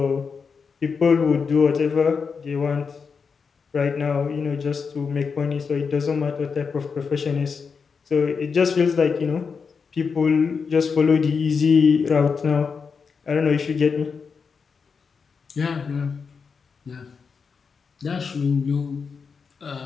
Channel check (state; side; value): quieter; right; 5.5 dB